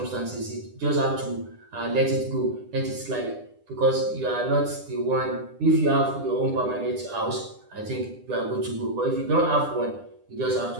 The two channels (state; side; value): late; left; 9.9 ms